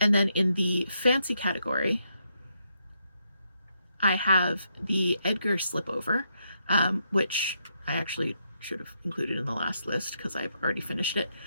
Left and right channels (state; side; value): inverted; both; correlation -0.79